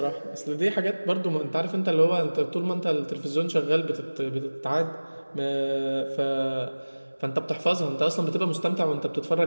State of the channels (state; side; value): inverted; both; correlation -1.00